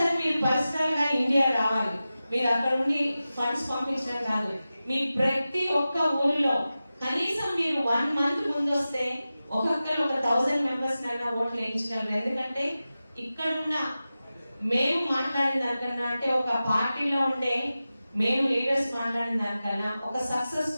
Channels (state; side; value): inverted; both; correlation -0.94